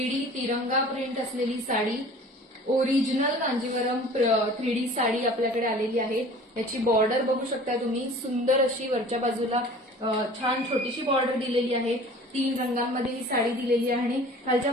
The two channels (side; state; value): both; normal; correlation 0.45